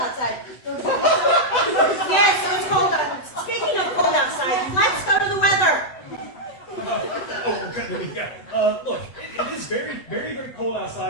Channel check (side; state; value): right; late; 7.9 ms